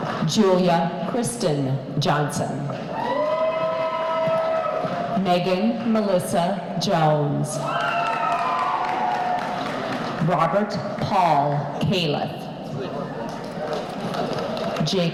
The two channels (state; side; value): identical; both; correlation 1.00